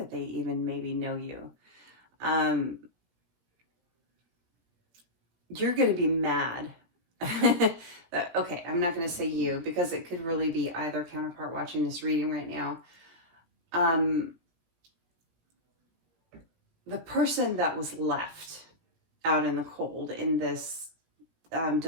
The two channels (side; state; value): left; late; 17 ms